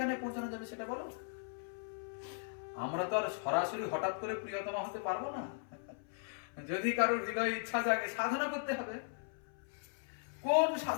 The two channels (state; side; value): silent; right; 52 dB below the other